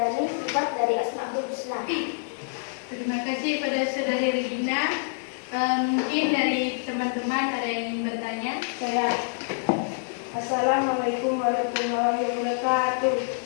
sifat dari Asmaul Husna. Terima kasih pada Saudari Regina. Mungkin dari teman-teman ada yang ingin bertanya? Saya. Assalamualaikum warahmatullahi wabarakatuh.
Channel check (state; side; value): silent; right; 56 dB below the other